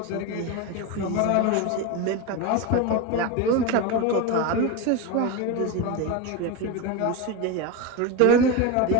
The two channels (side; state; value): both; different; correlation 0.05